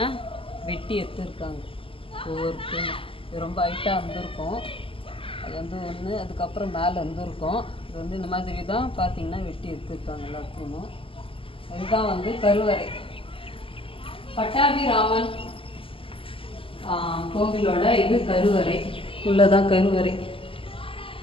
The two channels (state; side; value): late; right; 0.26 ms